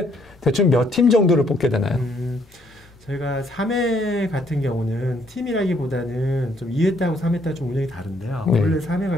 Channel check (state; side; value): normal; both; correlation 0.68